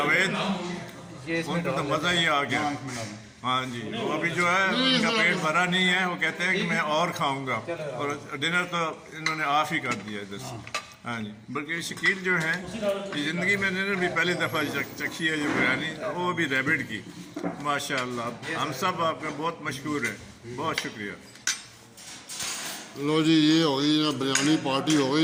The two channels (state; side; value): identical; both; correlation 1.00